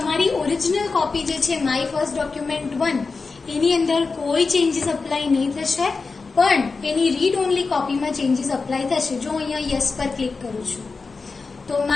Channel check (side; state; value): right; quieter; 4.3 dB